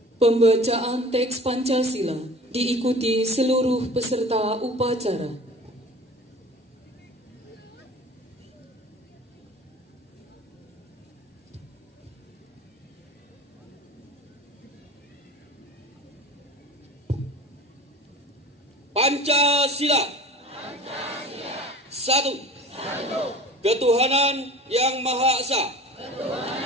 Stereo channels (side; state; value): both; normal; correlation 0.41